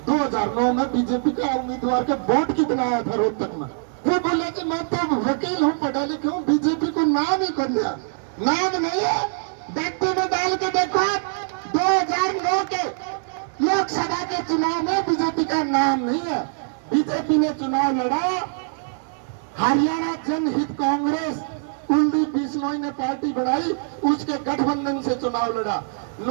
2009 में बीजेपी का उम्मीदवार के वोट कितना आया था रोहतक में? वो बोला कि मैं तो वकील हूँ, पढ़ा लिखा हूँ, बीजेपी को नाम ही कर दिया। नाम नहीं है, व्यक्ति में डाल के देखो। 2009 के लोकसभा के चुनाव में बीजेपी का नाम नहीं है। बीजेपी ने चुनाव लड़ा, हरियाणा जनहित कांग्रेस कुलदीप बिश्नोई ने पार्टी बनाई, उसके गठबंधन से चुनाव लड़ा।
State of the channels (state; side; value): silent; left; digital silence